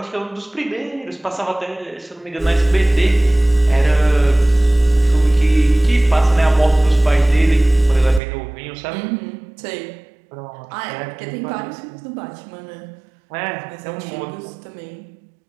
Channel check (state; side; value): drops out; left; at 8.2 s